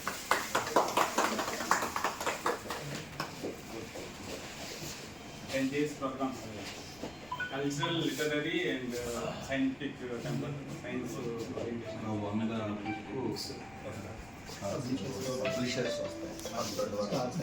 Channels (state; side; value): noise; left; rumble, 23 dB below the sound